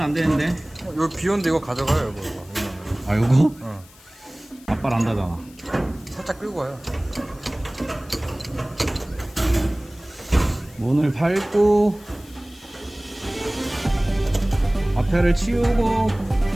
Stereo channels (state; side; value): noise; left; hiss, 25 dB below the sound